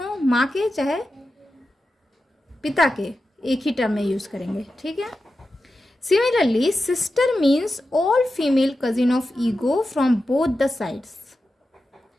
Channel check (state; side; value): normal; both; correlation 0.91